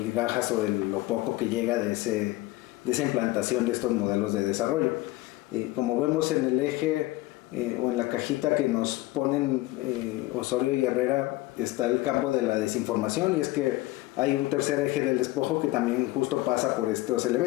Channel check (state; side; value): quieter; right; 18.4 dB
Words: o de lo poco que llega de esa implantación de estos modelos de desarrollo. Como vemos en el eje o en la cajita que nos ponen Osorio y Herrera, está el campo de la desinformación, y es que hay un tercer eje del despojo que también justo pasa por estos